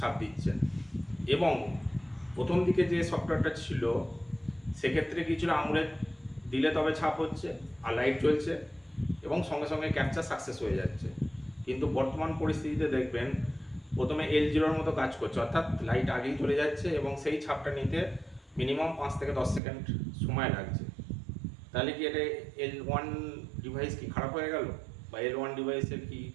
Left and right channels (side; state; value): left; drops out; at 19.6 s